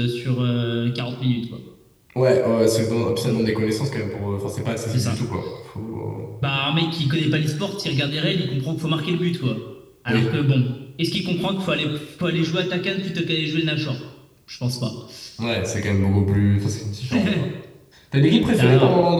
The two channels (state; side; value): identical; both; correlation 1.00